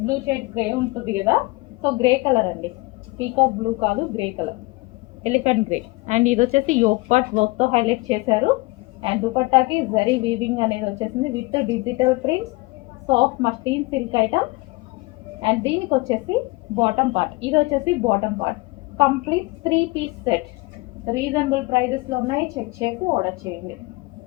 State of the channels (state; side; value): quieter; right; 23.8 dB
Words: blue shade grey ఉంటుంది కదా. సో గ్రే కలర్ అండి, పీకాక్ బ్లూ కాదు, grey colour elephant grey. And ఇది వచ్చేసి యోక్ పార్ట్ వర్క్తో హైలైట్ చేశారు. అండ్ దుపట్టాకి జరీ వీవింగ్ అనేది వచ్చేసింది with digital prints, soft muslin silk item. And దీనికి వచ్చేసి బాటమ్ పార్ట్, ఇది వచ్చేసి bottom part complete 3 piece set. Reasonable ప్రైజెస్లో ఉన్నాయి, చెక్ చేసి ఆర్డర్ చేయండి.